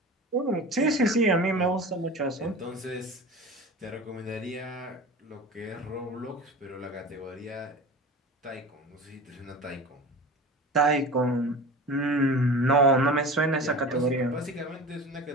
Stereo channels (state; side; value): normal; both; correlation 0.34